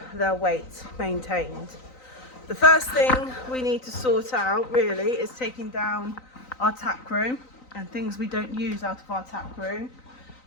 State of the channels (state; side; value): late; right; 3.9 ms